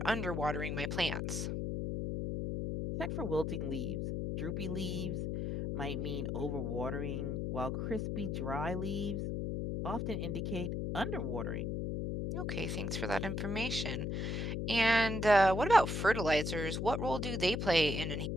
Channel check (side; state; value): left; noise; hum, 1 dB below the sound